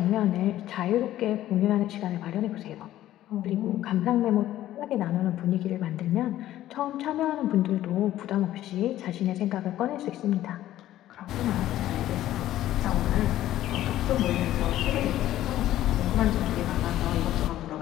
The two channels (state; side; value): quieter; right; 13.6 dB